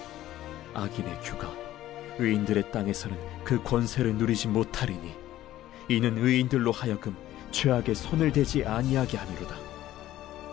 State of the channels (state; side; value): quieter; right; 14.0 dB